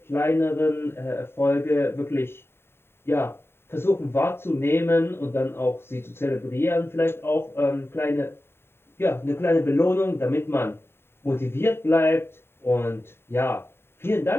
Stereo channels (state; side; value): late; right; 0.11 ms